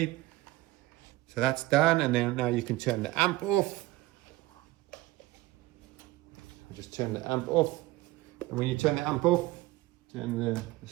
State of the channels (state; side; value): quieter; left; 18.1 dB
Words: So that's done, and then now you can turn the amp off. Just turn the amp off, and when you turn the amp off, turn